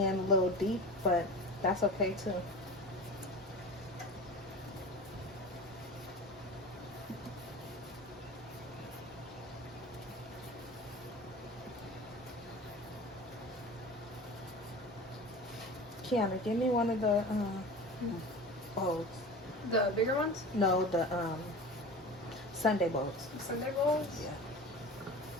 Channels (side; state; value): both; normal; correlation 0.34